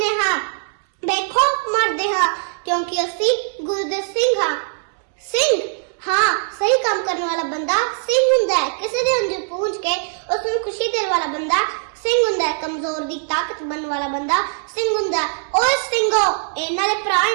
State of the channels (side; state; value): left; silent; 65 dB below the other